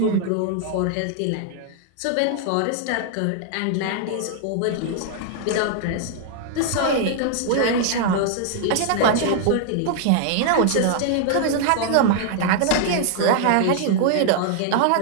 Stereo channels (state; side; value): different; both; correlation 0.00